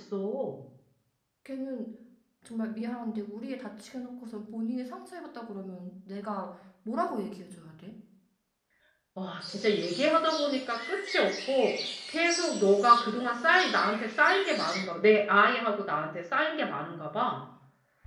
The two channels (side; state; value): both; identical; correlation 1.00